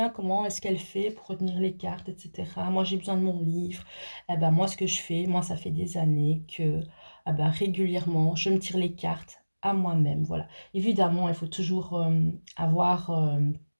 comment est-ce qu'elle fait pour retenir les cartes, etc. Moi j'ai besoin de mon livre. Eh ben moi ce que je fais, moi ça fait des années que régulièrement je me tire les cartes à moi-même. Voilà, évidemment il faut toujours avoir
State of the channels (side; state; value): both; inverted; correlation -1.00